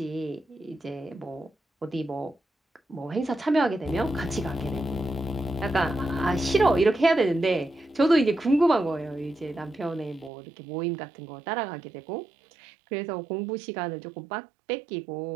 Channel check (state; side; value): drops out; left; at 10.3 s